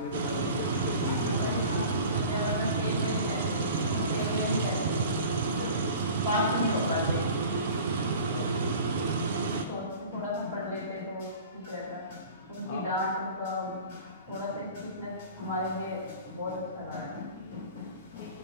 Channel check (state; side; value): inverted; both; correlation -0.41